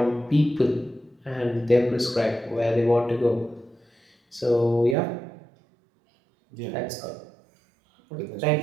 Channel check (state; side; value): drops out; left; at 5.0 s